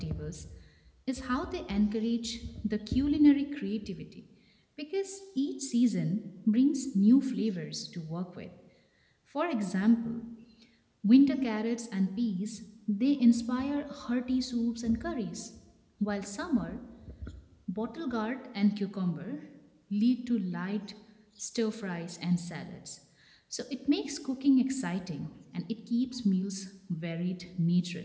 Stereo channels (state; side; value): identical; both; correlation 1.00